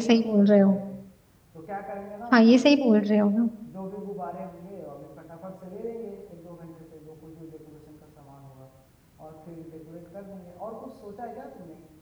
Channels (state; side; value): identical; both; correlation 1.00